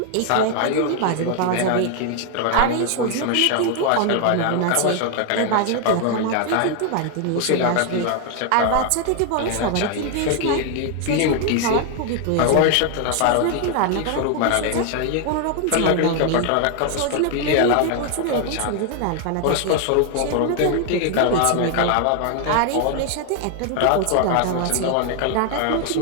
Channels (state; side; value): different; both; correlation 0.00